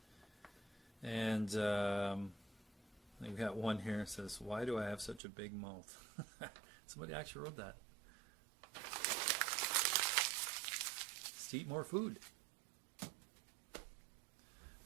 And we got one here that says, "Why do I have such a big mouth?" Somebody actually wrote that. Just to eat more food.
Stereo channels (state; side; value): drops out; left; at 5.2 s